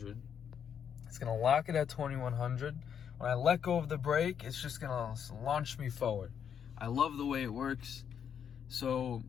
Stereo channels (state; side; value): quieter; right; 8.1 dB